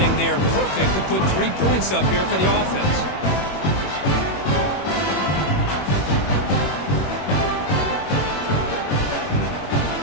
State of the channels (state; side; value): late; right; 21 ms